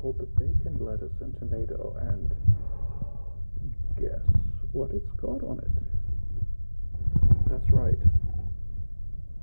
called the bacon, lettuce, and tomato, and guess what it's got on it? That's right.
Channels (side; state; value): both; inverted; correlation -1.00